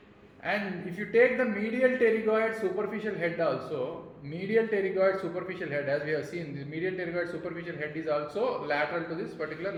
And if you take the medial pterygoid superficial head also, medial pterygoid superficial head, as we have seen, the medial pterygoid superficial head is also lateral to this particular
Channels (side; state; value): both; identical; correlation 1.00